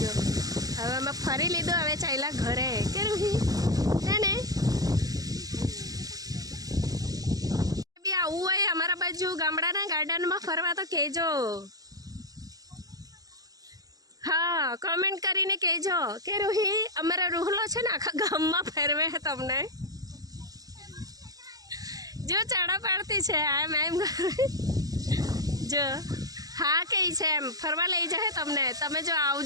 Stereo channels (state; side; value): late; left; 0.18 ms